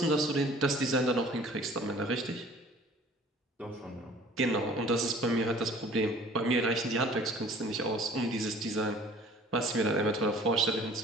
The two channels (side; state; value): both; normal; correlation 0.50